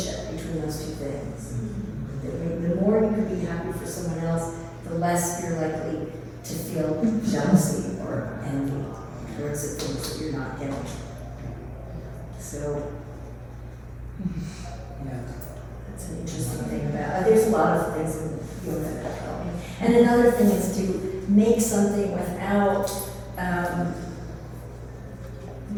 between those 2 things. The more you can be happy for someone else, the less you're likely to feel jealousy or envy towards the things that you're not getting. So that's an interesting thing about. There's a lot of things in yoga that help me. And another thing is to make something without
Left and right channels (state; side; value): identical; both; correlation 1.00